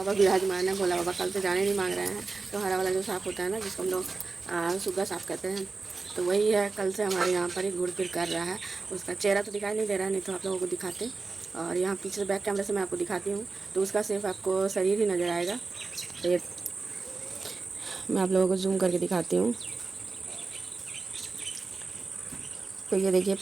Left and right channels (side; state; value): left; quieter; 4.1 dB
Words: विराजमान है। भोला बाबा कल से जाने नहीं मांग रहे हैं। तो हरा वाला जो साफ़ होता है ना, जिसको हम लोग सुग्गा साफ़ करते हैं, तो वही है। कल से हमारे यहाँ पर एक घुड़ फिर कर रहा है। उसका चेहरा तो दिखाई नहीं दे रहा है, नहीं तो आप लोगों को दिखाते। और यहाँ पीछे से बैक कैमरे से मैं आपको दिखाती हूँ, तो उसका सिर्फ आपको शरीर ही नज़र आएगा। तो ये मैं आप लोगों को जूम करके दिखाती हूँ। तो ये देखिए